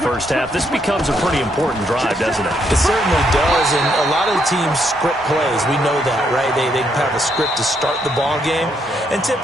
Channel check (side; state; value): both; normal; correlation 0.75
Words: half. This becomes a pretty important drive, doesn't it? It certainly does, and a lot of the teams script plays. We know that, right? They have a script to start the ball game, and